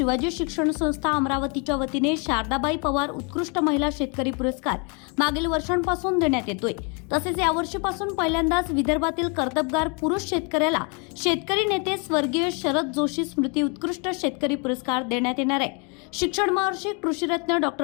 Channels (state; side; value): quieter; right; 34.2 dB